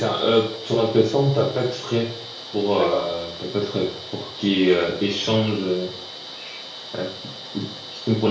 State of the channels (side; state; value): both; identical; correlation 1.00